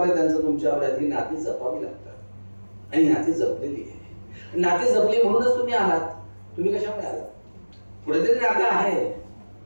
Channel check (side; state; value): both; inverted; correlation -1.00